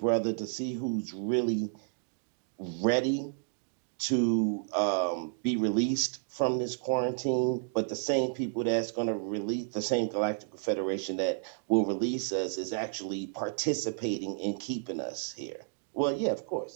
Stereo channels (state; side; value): silent; left; digital silence